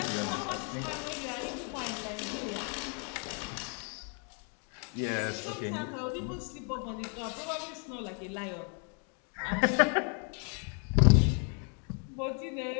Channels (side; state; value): right; quieter; 39.7 dB